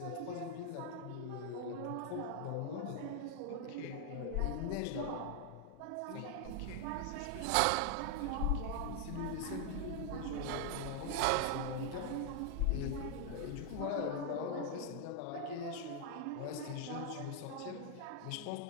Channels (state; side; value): different; both; correlation 0.00